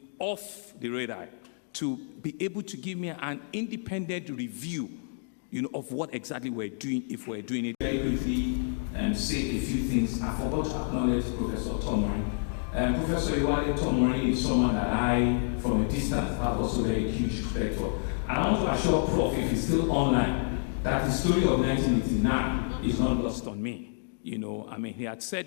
off the radar to be able to give me an independent review, of what exactly we're doing, if we're doing it. Very quickly, say a few things. I forgot to acknowledge Professor Tomori. Professor Iwale Tomori is someone that I, from a distance, have also very huge respect for. And I want to assure Prof, if he's still online, that the story of 1989 is not lost on me. He had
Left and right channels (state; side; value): silent; right; digital silence